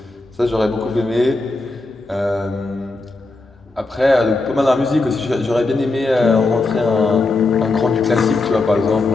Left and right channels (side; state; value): right; quieter; 3.3 dB